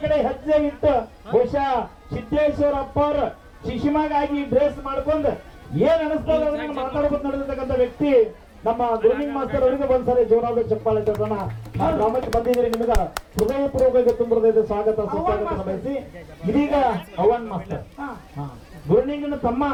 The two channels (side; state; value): both; identical; correlation 1.00